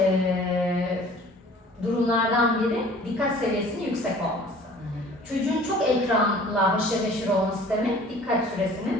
durumlardan biri dikkat seviyesinin yüksek olması. Çocuğun çok ekranla haşır neşir olması demek, dikkat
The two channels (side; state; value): both; normal; correlation 0.49